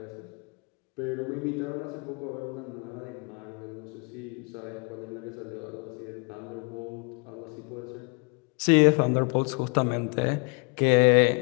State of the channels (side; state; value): right; quieter; 32.6 dB